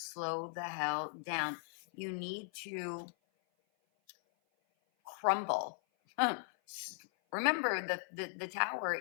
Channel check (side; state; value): right; silent; 52 dB below the other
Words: the hell down. You need to crumble. Remember, the tower